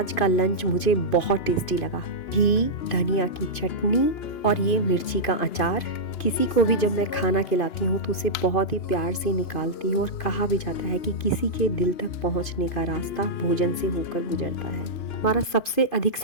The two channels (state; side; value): late; right; 2.4 ms